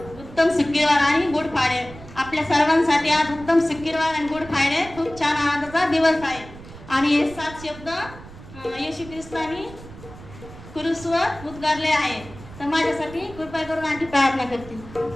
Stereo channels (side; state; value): right; noise; rumble, 17 dB below the sound